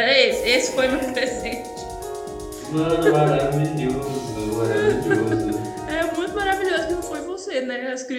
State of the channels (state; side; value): identical; both; correlation 1.00